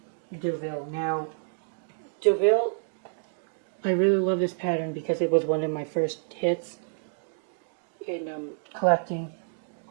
Deauville. Now, Deauville, I really love this pattern because it was one of my first hits in collecting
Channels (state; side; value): silent; left; digital silence